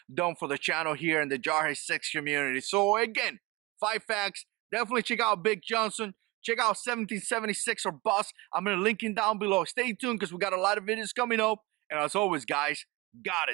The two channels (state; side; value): quieter; left; 22.0 dB